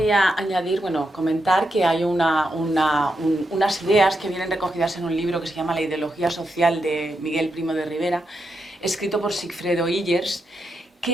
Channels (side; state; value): both; normal; correlation 0.85